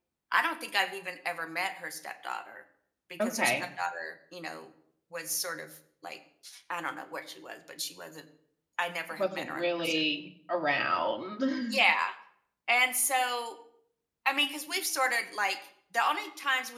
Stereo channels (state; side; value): identical; both; correlation 1.00